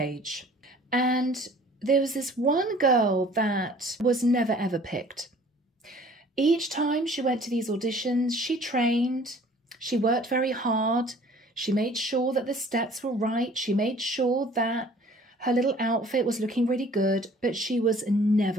and there was this one girl that was never ever picked. Each time she went to these auditions, she trained, she worked very hard, she made sure that the steps were right, she made sure that her little outfit was looking really good, but she was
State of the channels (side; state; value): both; normal; correlation 0.52